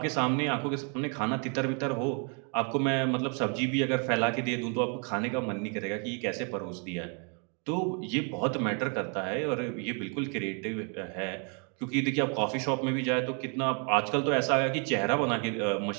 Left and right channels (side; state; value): left; quieter; 37.8 dB